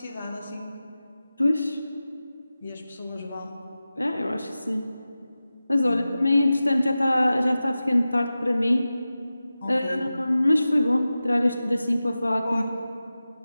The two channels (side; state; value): both; inverted; correlation -0.95